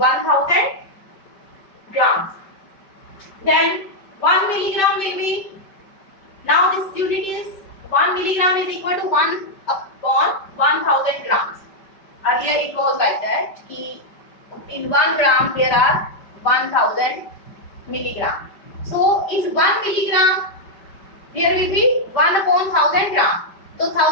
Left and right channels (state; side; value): late; right; 5.2 ms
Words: grams. Then 1 milligram will be, now this unit is 1 milligram is equal to 1/1000 grams. in 1 gram there are 1000 milligram. So in 1 milligram there will be 1 upon 1000 gram. तो